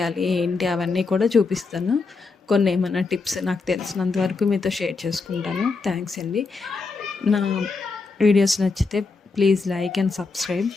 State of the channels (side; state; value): right; quieter; 4.2 dB